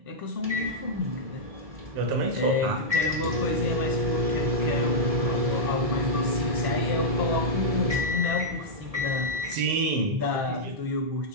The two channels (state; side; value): late; left; 1.7 ms